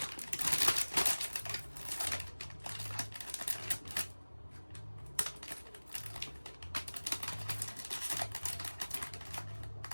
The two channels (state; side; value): inverted; both; correlation -1.00